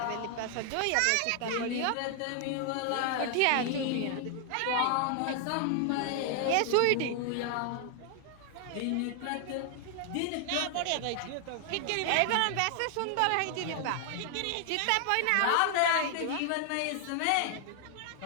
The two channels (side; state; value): both; different; correlation 0.00